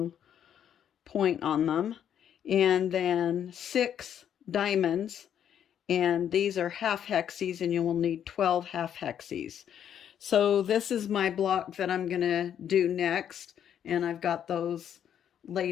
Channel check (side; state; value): right; quieter; 9.4 dB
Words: point on them. And then 6 diamonds, and these are half hexes, and you will need 12 half hexes. So this is my block that I'm going to do next, and I've got those